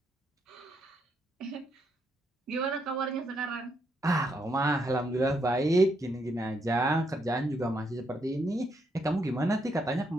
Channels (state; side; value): normal; both; correlation 0.77